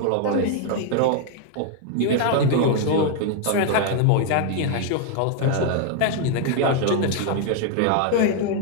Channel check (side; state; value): both; different; correlation 0.00